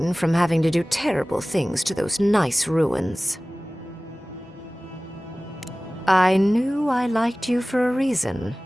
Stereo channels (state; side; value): normal; both; correlation 0.98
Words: from having to do terrible things to those nice ruins. I knew I liked you for a reason.